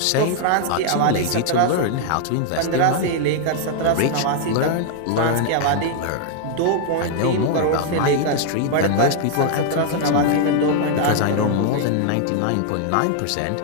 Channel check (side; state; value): both; different; correlation 0.00